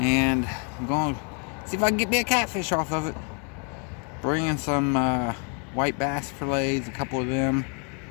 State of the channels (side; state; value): right; quieter; 37.6 dB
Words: I'm going to see if I can get me a catfish off of it. Bringing some white bass fillets, a couple of them,